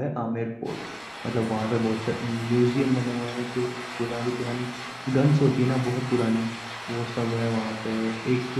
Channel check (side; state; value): both; identical; correlation 1.00